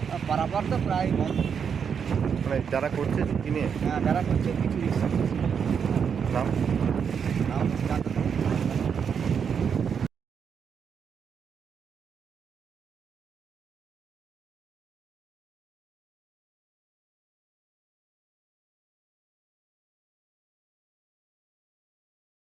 পারাপার তো প্রায় বন্ধ। মানে যারা করছে ঝুঁকি নিয়ে। হ্যাঁ, যারা করছে কিছু রিক্স। নাম? নাম জানতে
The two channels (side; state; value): left; quieter; 7.0 dB